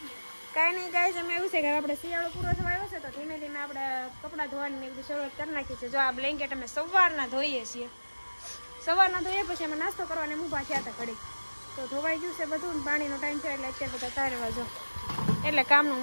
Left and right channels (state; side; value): inverted; both; correlation -1.00